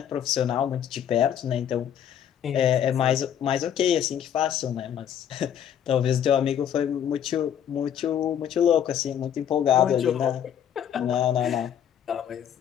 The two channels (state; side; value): quieter; right; 9.4 dB